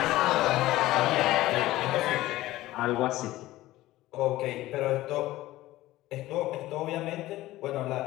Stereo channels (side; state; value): right; quieter; 16.5 dB